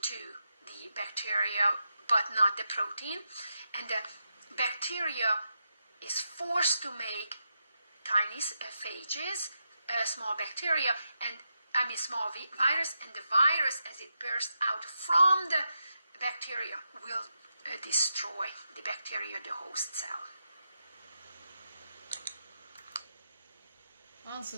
the bacteria, but not the protein, and the bacteria is forced to make tiny phages, small bacteria, and small virus, and the virus, as it bursts out from the bacteria, will destroy the bacteria, the host cell. Answer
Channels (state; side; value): inverted; both; correlation -0.86